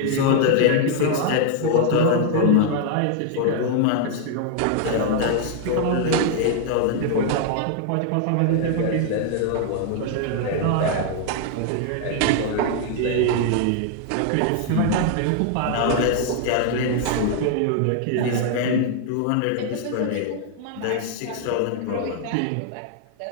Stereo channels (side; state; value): both; different; correlation 0.00